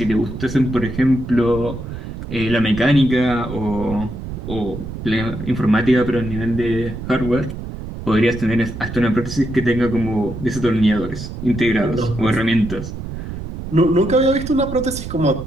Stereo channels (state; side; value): noise; right; rumble, 8 dB below the sound